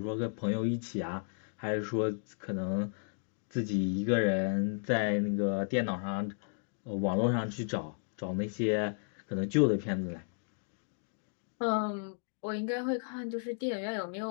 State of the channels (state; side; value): silent; right; digital silence